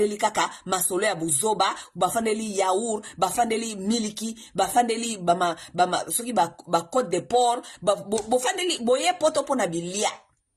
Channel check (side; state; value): both; identical; correlation 1.00